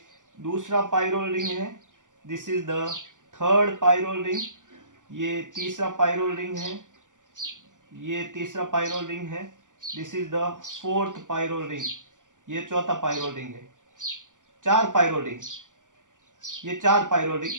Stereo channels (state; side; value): late; left; 0.87 ms